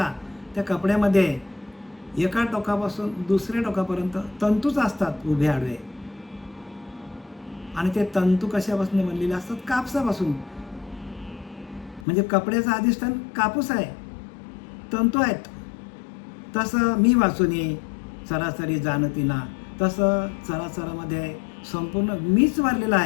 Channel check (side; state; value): right; drops out; at 12.1 s